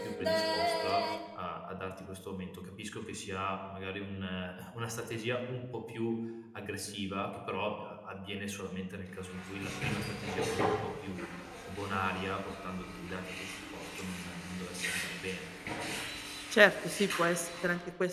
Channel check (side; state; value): both; identical; correlation 1.00